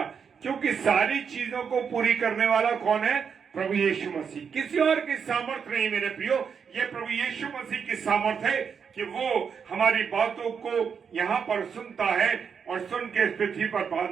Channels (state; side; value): quieter; left; 6.6 dB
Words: क्योंकि सारी चीजों को पूरी करने वाला कौन है? प्रभु यीशु मसीह। किसी और की सामर्थ नहीं मेरे प्रियो, ये प्रभु यीशु मसीह की सामर्थ है कि वो हमारी बातों को यहां पर सुनता है और सुन के इस पृथ्वी पर